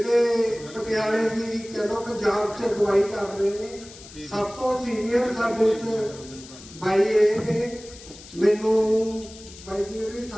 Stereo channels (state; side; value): noise; left; hiss, 18 dB below the sound